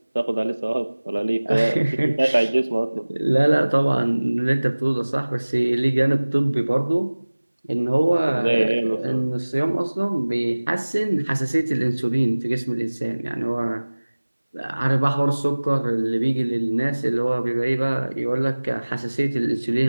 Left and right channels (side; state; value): both; inverted; correlation -1.00